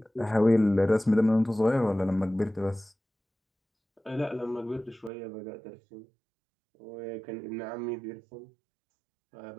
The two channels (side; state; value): left; drops out; at 5.1 s